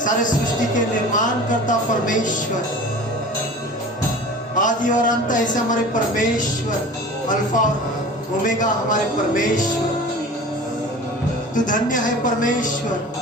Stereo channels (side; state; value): both; normal; correlation 0.39